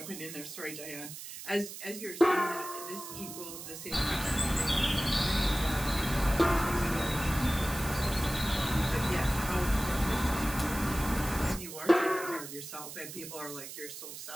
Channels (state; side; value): noise; right; hiss, 11 dB below the sound